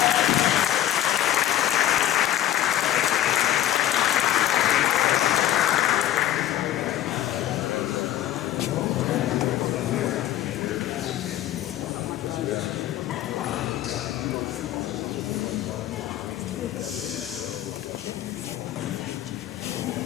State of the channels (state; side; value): quieter; right; 12.9 dB